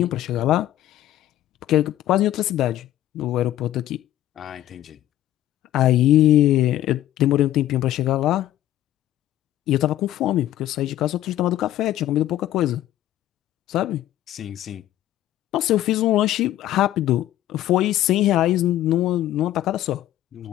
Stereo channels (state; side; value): quieter; right; 13.3 dB